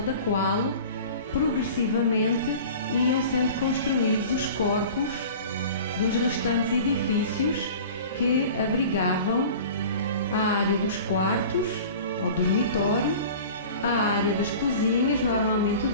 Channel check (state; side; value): inverted; both; correlation -0.40